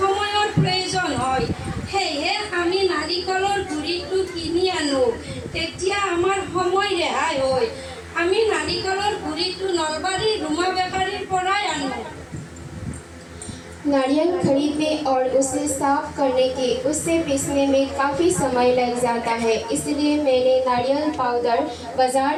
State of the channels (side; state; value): both; identical; correlation 1.00